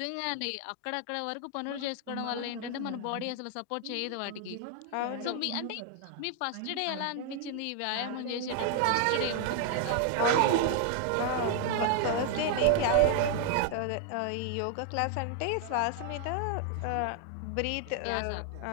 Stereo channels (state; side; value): different; both; correlation 0.00